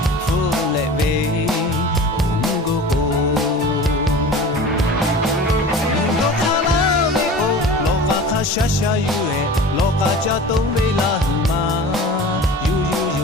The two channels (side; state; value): both; normal; correlation 0.38